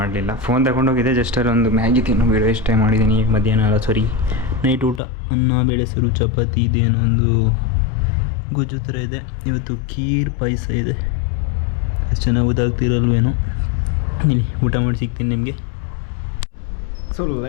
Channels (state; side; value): drops out; right; at 5.0 s